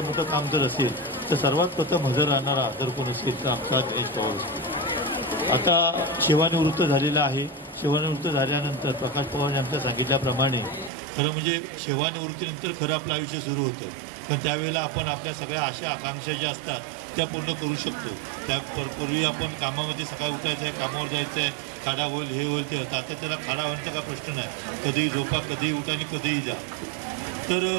मोठं काम जर असेल तर सर्वात प्रथम हजर राहणारा जर कोण असेल तर आमचा दिनेश पवार असतो. आता सेवानिवृत्त झालेला आहे. सेवानिवृत्त झाल्यानंतर प्रकाश पवार यांच्या सांगितल्याप्रमाणे खरं म्हणजे सेवानिवृत्तीनंतर खरं आपलं आयुष्य सुरू होतं, पण त्यावेळेला आपण आपल्या सगळ्या आशा आकांक्षा ज्या असतात त्या पूर्ण करू शकतो. त्यापूर्वी आपण कामामध्ये सकाळी उठायचं आहे, कामावर जायचं आहे, खाडा होईल, हे होईल, ते होतं. आता त्याला खाडा व्हायचा का प्रश्न नाही, कधीही झोपा, कधीही उठा आणि कधीही जा. तर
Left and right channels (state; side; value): drops out; left; at 10.9 s